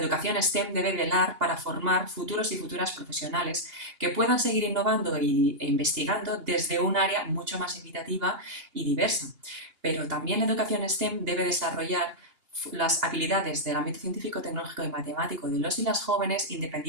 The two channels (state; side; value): late; left; 2.8 ms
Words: STEM debe velar para formar futuros y futuras profesionales que puedan seguir innovando e investigando desde un área mucho más equitativa y diversa. Pero también la educación STEM debe desarrollar las habilidades del ámbito científico, tecnológico y matemático de los y las jóvenes